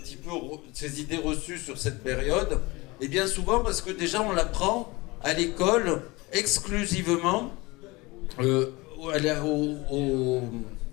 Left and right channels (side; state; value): right; quieter; 23.2 dB